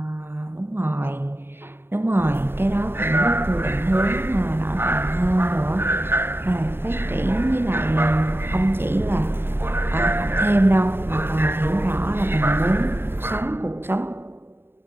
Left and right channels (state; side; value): late; left; 0.11 ms